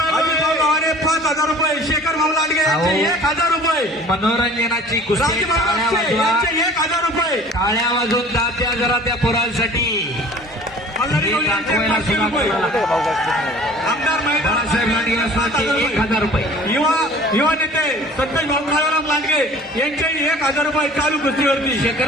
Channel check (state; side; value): normal; both; correlation 0.47